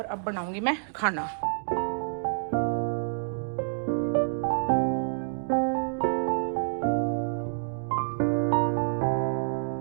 अब बनाऊंगी मैं खाना।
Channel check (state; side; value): silent; left; digital silence